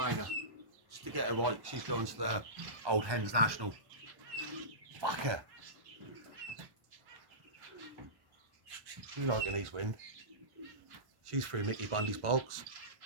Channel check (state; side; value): late; left; 1.1 ms